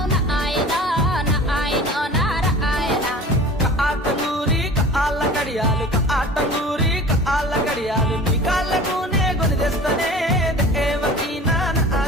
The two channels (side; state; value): both; normal; correlation 0.41